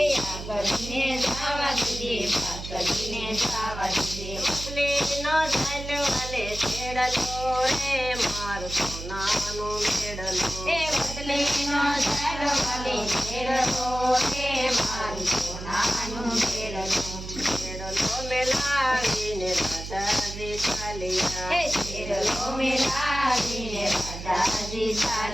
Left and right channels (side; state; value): right; noise; hum, 9 dB below the sound